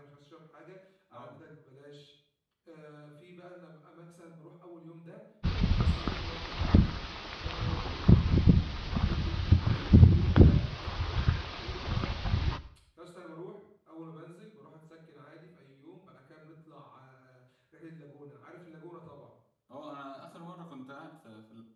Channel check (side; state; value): both; identical; correlation 1.00